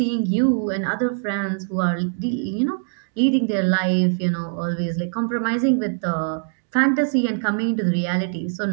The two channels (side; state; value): left; silent; digital silence